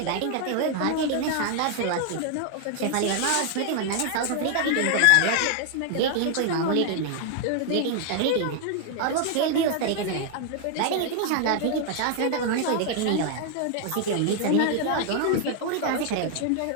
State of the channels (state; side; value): different; both; correlation 0.00